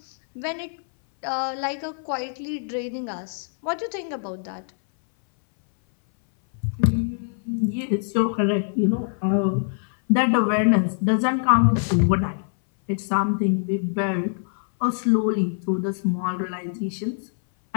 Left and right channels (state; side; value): silent; right; 60 dB below the other